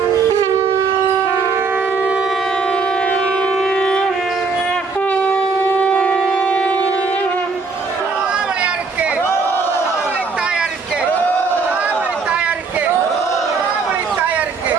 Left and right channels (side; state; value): left; quieter; 4.6 dB